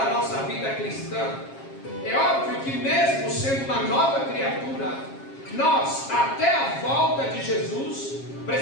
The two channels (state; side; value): late; right; 7.4 ms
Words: nossa vida cristã, é óbvio que mesmo sendo uma nova criatura, nós, até a volta de Jesus,